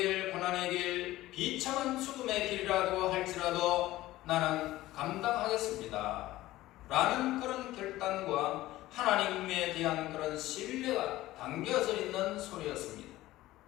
고난의 길, 비참한 죽음의 길이라도 할지라도 나는 감당하겠습니다. 라는 그런 결단과 하나님에 대한 그런 신뢰가 담겨져 있는 소리였습니다.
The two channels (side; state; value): right; quieter; 16.5 dB